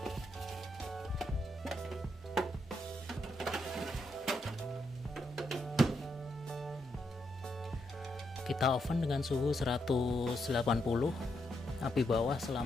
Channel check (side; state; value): both; normal; correlation 0.80